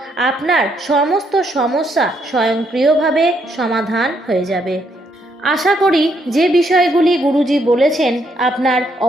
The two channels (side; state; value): both; normal; correlation 0.74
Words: আপনার সমস্ত সমস্যা স্বয়ংক্রিয়ভাবে সমাধান হয়ে যাবে। আশা করি যে বিষয়গুলি গুরুজি বলেছেন আপনার